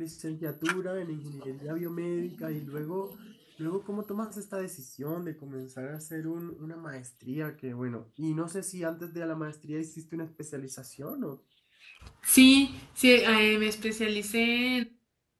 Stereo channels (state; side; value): identical; both; correlation 1.00